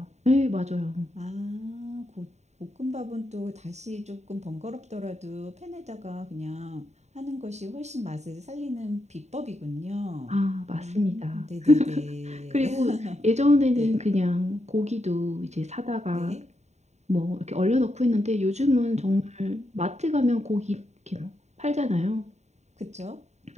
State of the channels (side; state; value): left; late; 0.32 ms